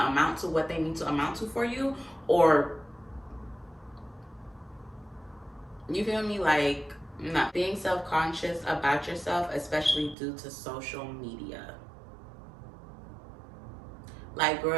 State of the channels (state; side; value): drops out; left; at 10.2 s